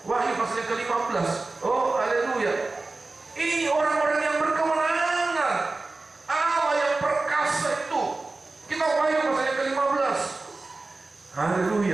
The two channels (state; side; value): quieter; left; 3.4 dB